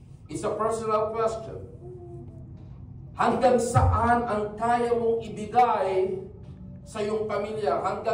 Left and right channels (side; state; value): both; identical; correlation 1.00